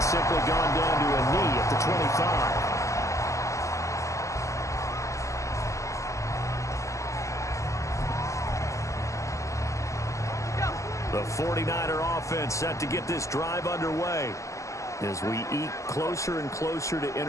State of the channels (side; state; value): right; late; 0.15 ms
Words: simply gone down to a knee at the 25. The 49er offense set to get this drive underway. As we eke closer and closer to